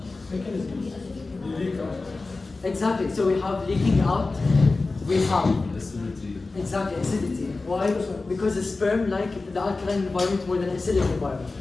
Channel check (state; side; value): quieter; right; 3.6 dB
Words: Exactly. So we have leaking out. We have Acidity. exactly acidity. Why? Because the sperm like the alkaline environment more than acidic environment.